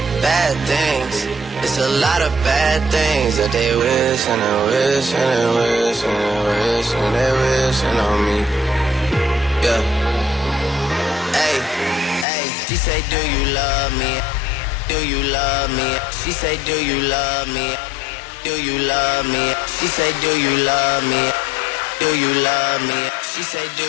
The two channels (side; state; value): right; drops out; at 12.2 s